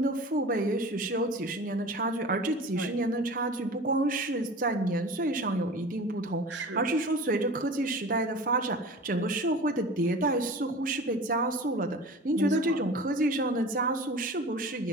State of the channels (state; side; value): normal; both; correlation 0.38